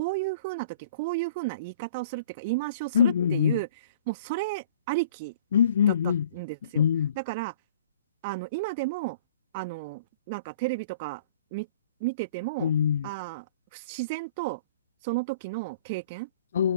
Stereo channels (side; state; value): both; inverted; correlation -0.49